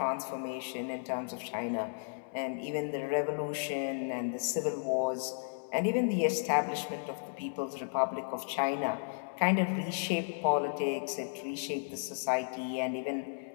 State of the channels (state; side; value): silent; right; digital silence